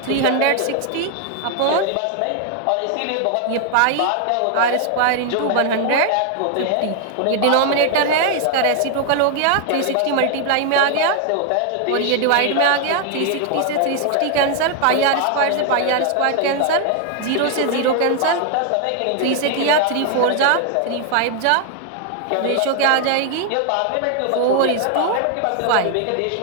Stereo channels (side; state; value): both; different; correlation 0.00